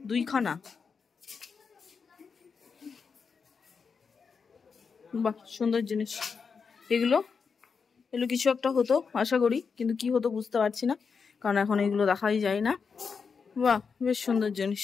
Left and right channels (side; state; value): right; quieter; 5.6 dB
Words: 2খানা। বাহ সুন্দর জিনিস এগুলো। এগুলো কিছু একটা হতো আশা করি, কিন্তু কি হতো বুঝতে পারছি না, কারণ এখন এগুলো দেখাই যায় না। বাহ বেশ সুন্দর জিনিস।